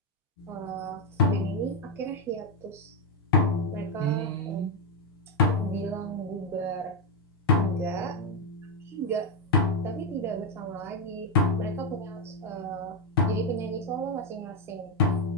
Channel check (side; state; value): both; normal; correlation 0.04